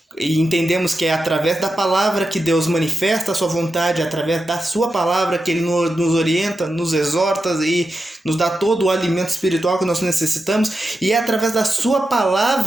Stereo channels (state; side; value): normal; both; correlation 0.89